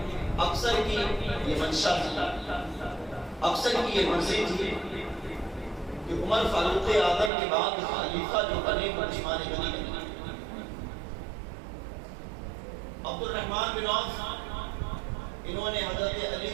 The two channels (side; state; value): left; drops out; at 7.3 s